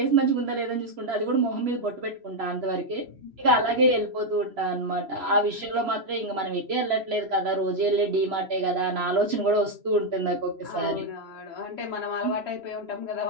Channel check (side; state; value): left; late; 3.0 ms